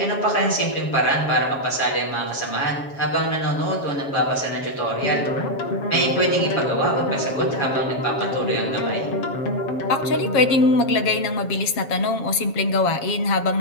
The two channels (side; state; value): right; late; 7.2 ms